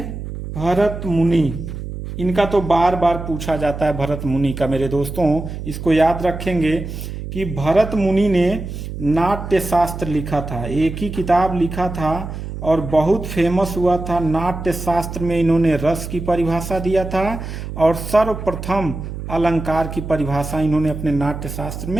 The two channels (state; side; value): noise; right; hum, 8 dB below the sound